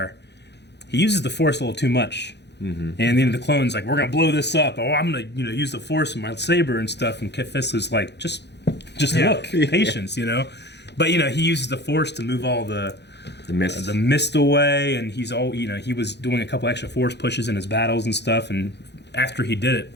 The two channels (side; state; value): right; late; 0.50 ms